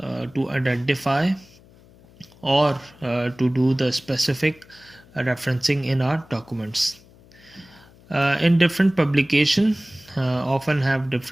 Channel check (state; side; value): noise; left; hum, 26 dB below the sound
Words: identify or to do the specific referencing in our documents. In different publication often have